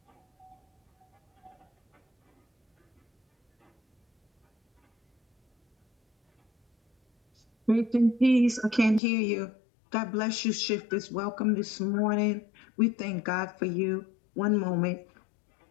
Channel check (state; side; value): drops out; right; at 9.0 s